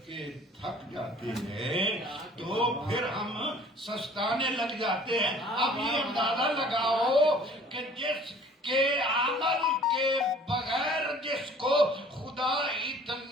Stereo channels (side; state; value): both; normal; correlation 0.51